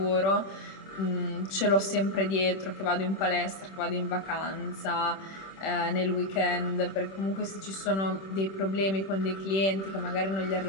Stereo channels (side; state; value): right; late; 26 ms